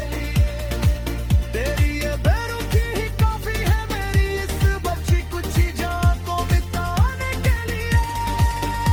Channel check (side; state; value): both; identical; correlation 1.00